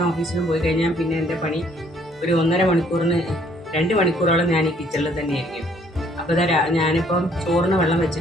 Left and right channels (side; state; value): both; normal; correlation 0.63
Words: ഓഫീസിലും പോയി കഴിഞ്ഞാൽ പിന്നെ എൻ്റെ പണി ഒരു 2 മണിക്കൂറോളം ഞാൻ ഈ കിച്ചണിൽ തന്നെയായിരിക്കും. അപ്പോൾ ഞാനിപ്പം ചോറിന് വെള്ളം